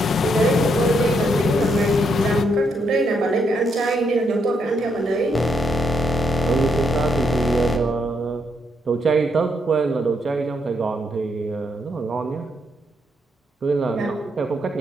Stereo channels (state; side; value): normal; both; correlation 0.77